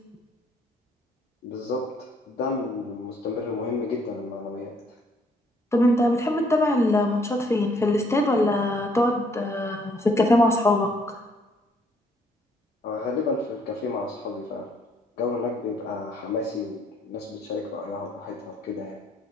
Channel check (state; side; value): normal; both; correlation 0.66